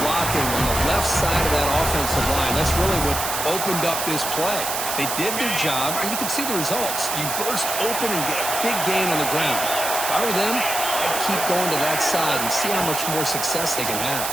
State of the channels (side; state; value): right; noise; hiss, 3 dB below the sound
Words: blocking on the left side of that offensive line. That's really what opened up this play. They did their job, and you can see the results. You burst open and get a big gain on the ground. If I were them, I'd keep going to that side and see how much more success they can have.